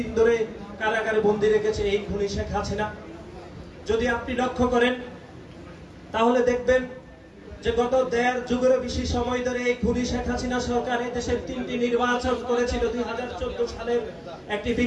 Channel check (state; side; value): identical; both; correlation 1.00